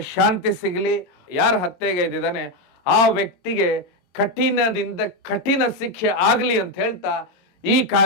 ಶಾಂತಿ ಸಿಗಲಿ. ಯಾರು ಹತ್ಯೆಗೈದಿದ್ದಾನೆ ಆ ವ್ಯಕ್ತಿಗೆ ಕಠಿಣದಿಂದ ಕಠಿಣ ಶಿಕ್ಷೆ ಆಗಲಿ ಅಂತ ಹೇಳ್ತಾ ಈ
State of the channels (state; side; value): late; right; 22 ms